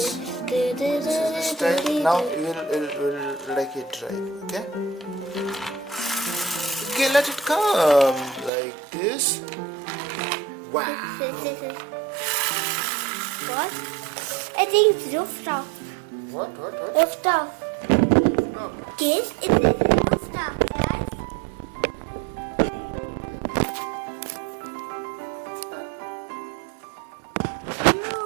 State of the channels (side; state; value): left; drops out; at 8.5 s